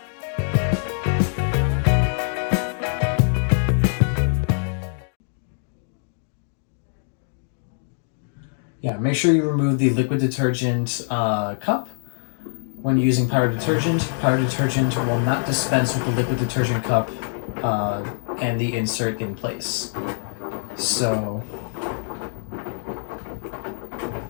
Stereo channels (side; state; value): right; silent; digital silence